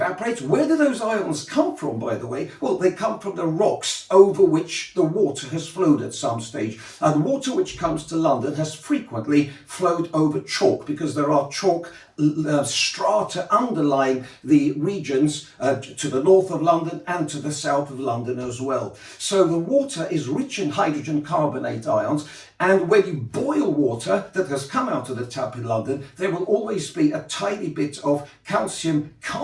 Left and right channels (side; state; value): both; identical; correlation 1.00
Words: where do those ions come from, by the way? Well, they come from the rocks over which the water has flowed at some stage. And water which comes to London has frequently flowed over chalk, because there are chalk strata underlying the regions to the north of London and to the south of London as well. So the water is rich in hydrogen carbonate ions, and when you boil water that has come out of the tap in London, there will always be a tiny bit of calcium